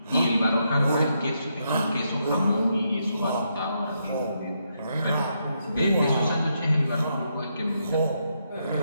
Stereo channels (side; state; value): both; inverted; correlation -0.79